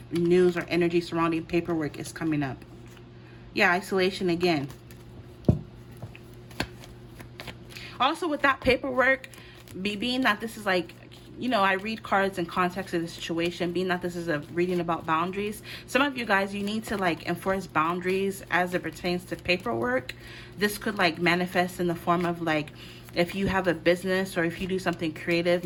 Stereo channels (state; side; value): identical; both; correlation 1.00